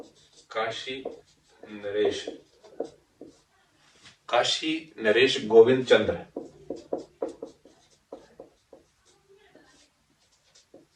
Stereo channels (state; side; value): identical; both; correlation 1.00